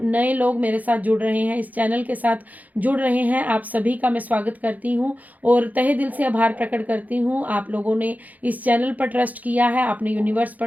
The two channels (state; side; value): late; left; 0.079 ms